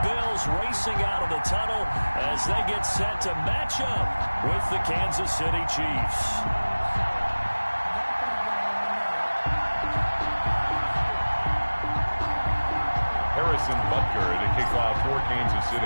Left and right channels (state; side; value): inverted; both; correlation -1.00